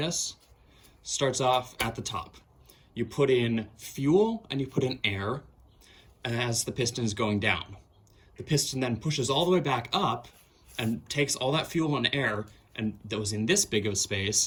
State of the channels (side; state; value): both; identical; correlation 1.00